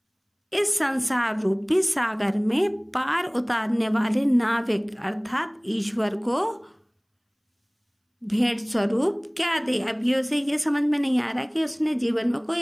इस संसार रूपी सागर में पार उतारने वाले नाविक अर्थात ईश्वर को भेंट स्वरूप क्या दे। अब ये उसे ये समझ में नहीं आ रहा कि उसने जीवन में कोई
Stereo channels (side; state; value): both; identical; correlation 1.00